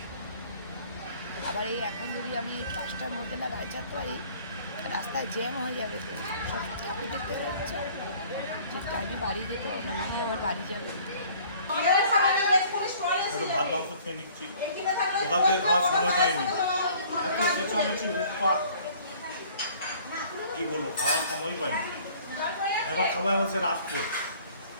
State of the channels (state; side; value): inverted; both; correlation -0.53